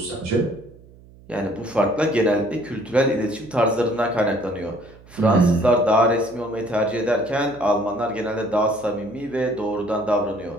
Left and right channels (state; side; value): noise; right; hum, 23 dB below the sound